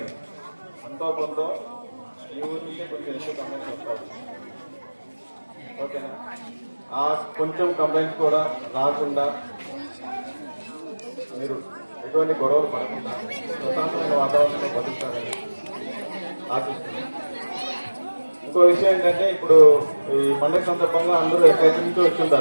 అంతో కొంత ఈ ఊరి నుంచే కొంచెం ఎక్కువ కంప్లైంట్స్ వస్తారు. ఓకేనా? ఆ కొంచెం కంప్లైంట్స్ కూడా రాకుండా మీరు ఎటువంటి గొడవలు పడకుండా ప్రశాంతమైన వాతావరణంలో బతుకుతారని ఆశిస్తున్నాను. ఇంకో విషయం ఏంటంటే, ఇప్పుడు ఈ పండుగ సందర్భంగా అందరూ ఎక్కడి నుంచో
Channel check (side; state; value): both; inverted; correlation -1.00